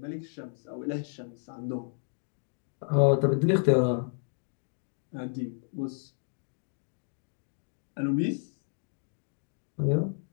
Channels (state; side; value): silent; right; digital silence